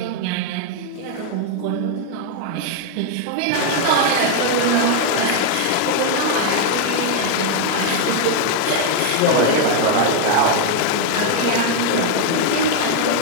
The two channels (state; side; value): different; both; correlation 0.00